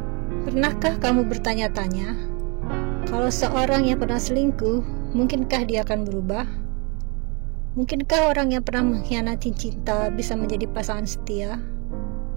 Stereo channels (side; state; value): left; quieter; 31.8 dB